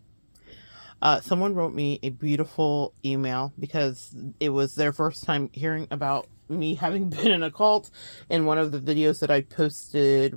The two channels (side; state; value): both; inverted; correlation -1.00